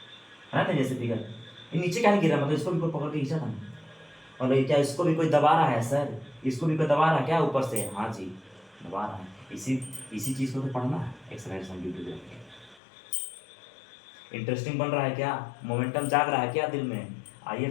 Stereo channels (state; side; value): drops out; right; at 12.8 s